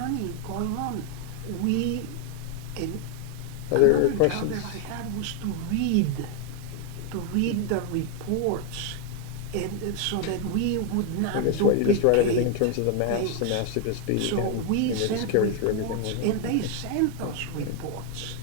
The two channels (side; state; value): both; different; correlation 0.01